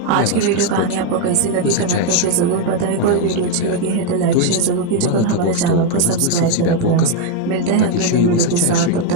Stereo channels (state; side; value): different; both; correlation 0.01